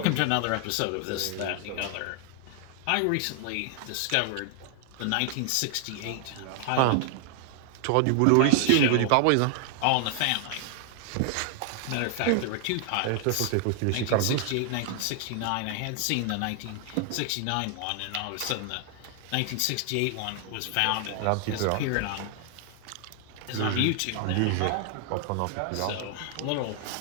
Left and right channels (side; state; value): both; different; correlation 0.00